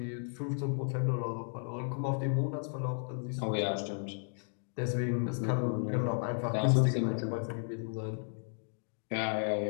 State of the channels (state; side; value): silent; right; digital silence